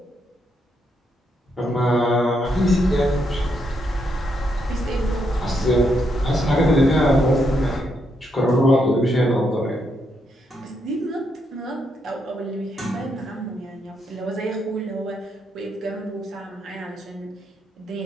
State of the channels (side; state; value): both; normal; correlation 0.78